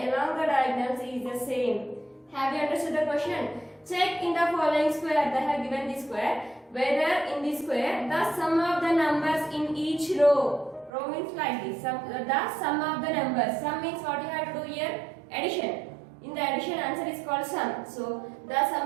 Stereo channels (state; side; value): drops out; left; at 10.9 s